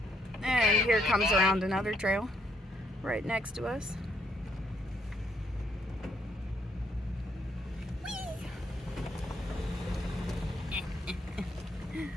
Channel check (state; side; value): normal; both; correlation 0.72